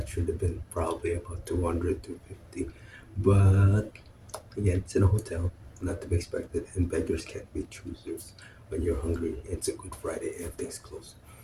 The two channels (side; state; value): both; identical; correlation 1.00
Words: should have been probably about 200, 250. But again, it's in a hotel, not to be expected, and beggars can't be choosers. When you're hungry, it's a Good Friday, everything's closed.